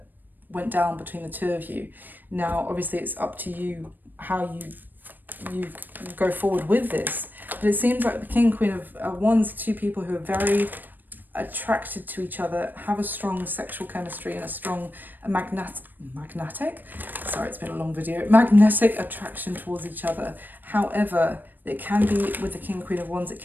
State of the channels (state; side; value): late; left; 0.090 ms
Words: went down between the two of you. Now, obviously, it's up to you how you go forward with this. But it seems like the King, Queen of Wands, two people who are very attracted to each other, have a strong sexual chemistry and a strong magnetic attraction towards each other. However, it can be, with the King, Queen of Wands, it